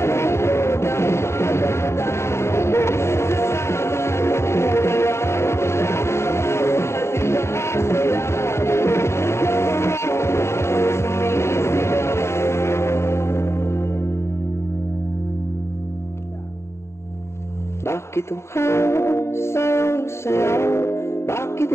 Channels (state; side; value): late; right; 0.13 ms